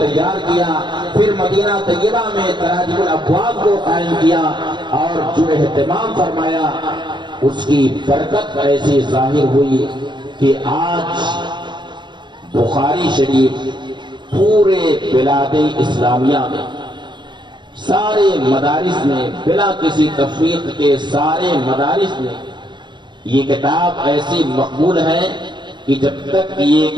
کیا. پھر مدینہ طیبہ میں تراجم الابواب کو قائم کیا اور جو اہتمام فرمایا اس کی برکت ایسی ظاہر ہوئی کہ آج بخاری شریف پورے بلاد اسلامیہ میں سارے مدارس میں بلا کسی تفریق کے سارے مدارس میں یہ کتاب ایسی مقبول ہے کہ جب تک یہ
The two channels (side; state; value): left; late; 0.22 ms